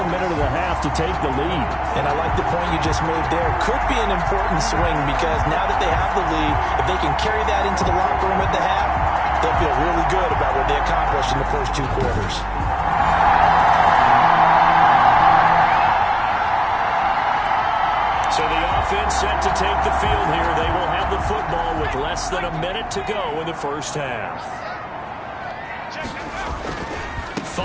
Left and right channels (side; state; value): both; identical; correlation 1.00